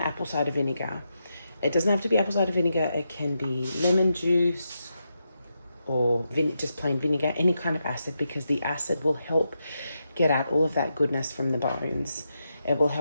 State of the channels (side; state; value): both; inverted; correlation -0.85